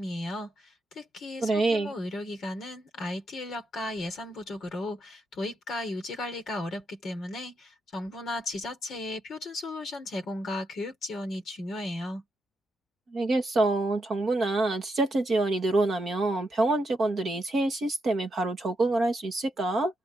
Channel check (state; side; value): normal; both; correlation 0.82